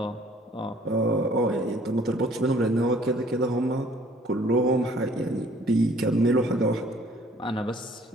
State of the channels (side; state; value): both; normal; correlation 0.57